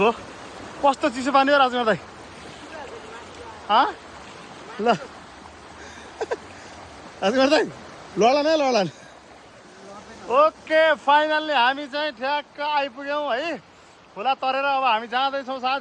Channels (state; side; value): identical; both; correlation 1.00